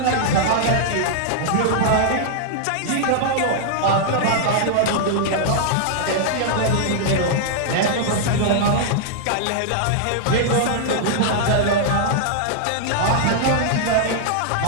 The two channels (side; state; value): both; different; correlation -0.01